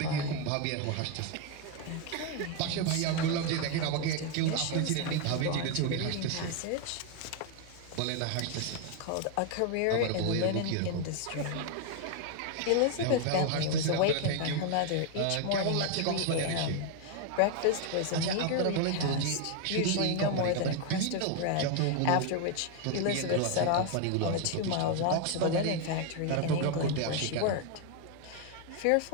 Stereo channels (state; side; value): different; both; correlation 0.01